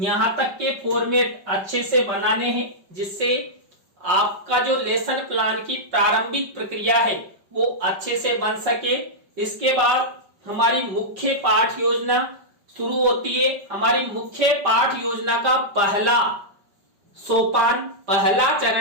तक के फॉर्मेट अच्छे से बनाने हैं, जिससे आपका जो लेसन प्लान की प्रारंभिक प्रक्रिया है वो अच्छे से बन सके। इसके बाद हमारी मुख्य पाठ योजना शुरू होती है। हमारी मुख्य पाठ योजना का पहला सोपान, पहला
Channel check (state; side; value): late; left; 5.2 ms